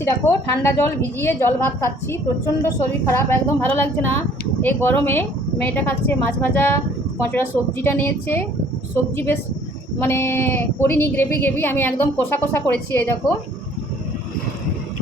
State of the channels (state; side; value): normal; both; correlation 0.57